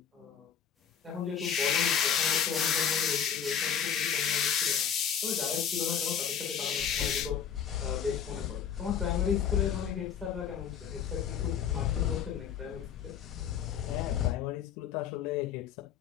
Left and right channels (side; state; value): right; quieter; 8.0 dB